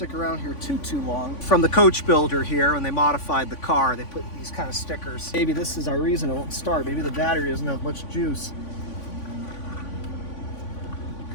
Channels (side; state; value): right; late; 3.5 ms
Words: around here too long. From the coach builder here, when they modified the car, they put these kind of stickers. Maybe this is our reason it won't start. Maybe the battery doesn't have much juice.